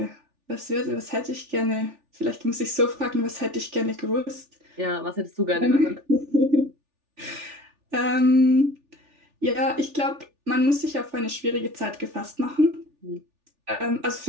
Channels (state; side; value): late; left; 3.4 ms